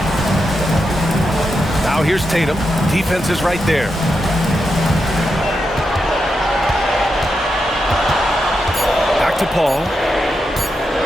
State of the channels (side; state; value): both; normal; correlation 0.86